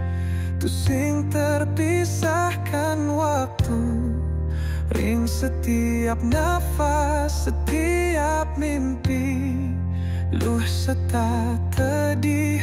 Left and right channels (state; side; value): identical; both; correlation 1.00